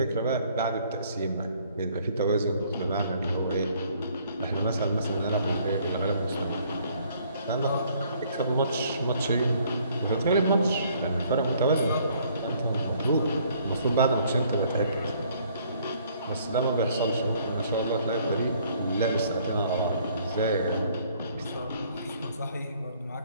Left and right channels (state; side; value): inverted; both; correlation -0.62